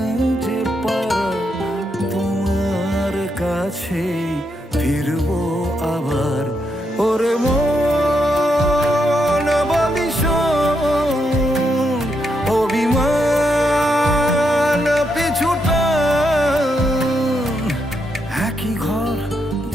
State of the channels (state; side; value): normal; both; correlation 0.80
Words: যে পারা, তোমার কাছে ফিরবো আবার। ওরে মন বলিশন অভিমান পিছুটা, একই ঘর